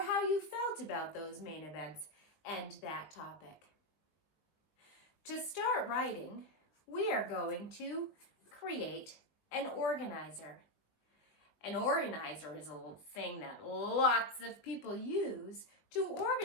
how you felt about those main events and that topic. To start writing, we are going to create an organizer. An organizer is a thing that lots of people use to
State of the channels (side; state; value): right; late; 20 ms